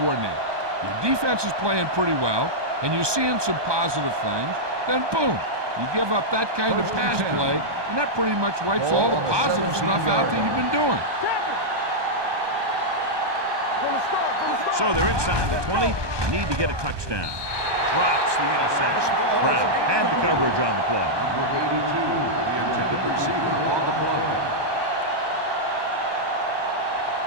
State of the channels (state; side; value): late; left; 1.2 ms